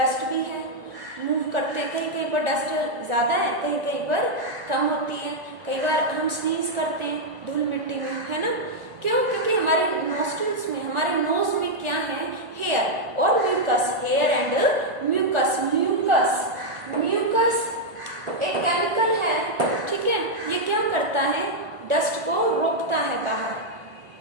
भी है, मूव करते हैं, कहीं कहीं पर डस्ट ज्यादा है, कहीं कहीं पर कम होती है, कई बार हम स्नीज करते हैं धूल मिट्टी में, है ना। क्यों? क्योंकि हमारे नोस्ट्रल्स में, हमारे नोज में क्या है, हेयर और mucus, hair and mucus. Mucus mucus एक केमिकल है, ठीक है। ये क्या करता है, डस्ट को रोकता है बाहर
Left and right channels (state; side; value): late; left; 1.4 ms